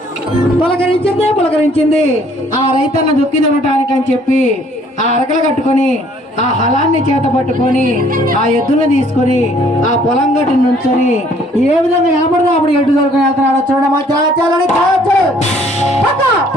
పులకరించింది ఆ రైతన్న దుక్కి దున్నటానికి అని చెప్పి ఆ అరకలు కట్టుకొని ఆ హలాన్ని చేత పట్టుకొని ఆ ఎద్దులను తీసుకొని ఆ పొలం గట్టు నుంచొని ఏ విధంగా కనపడదో అప్పుడు ఎడ్డు దొరుకుని వెళ్తున్నాడో చూడమా. చాలని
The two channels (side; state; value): both; normal; correlation 0.60